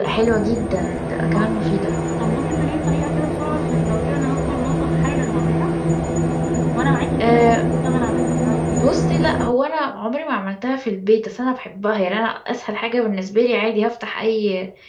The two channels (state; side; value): identical; both; correlation 1.00